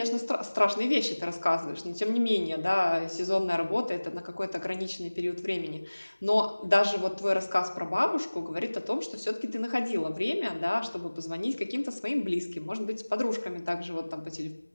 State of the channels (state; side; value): inverted; both; correlation -1.00